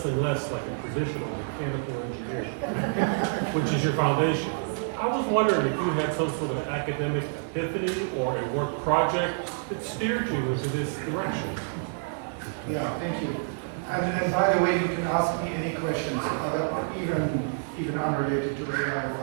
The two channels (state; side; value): silent; left; 59 dB below the other